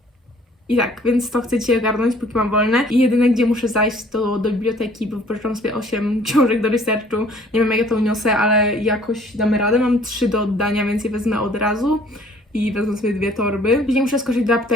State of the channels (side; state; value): both; normal; correlation 0.56